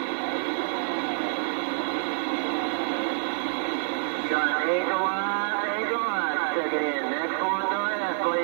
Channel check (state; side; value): silent; left; digital silence